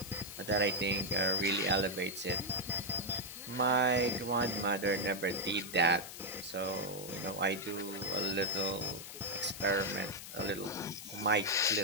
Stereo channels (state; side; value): noise; left; hiss, 11 dB below the sound